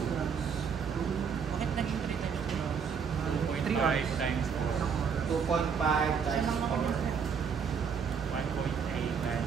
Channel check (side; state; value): left; quieter; 6.5 dB